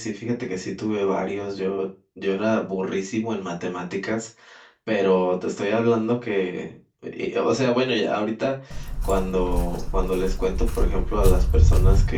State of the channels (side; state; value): both; identical; correlation 1.00